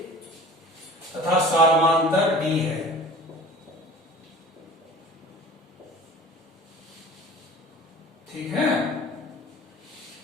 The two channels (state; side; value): normal; both; correlation 0.42